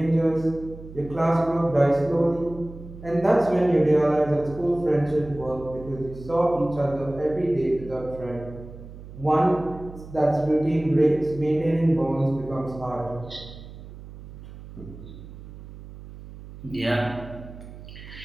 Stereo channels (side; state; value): right; noise; hum, 15 dB below the sound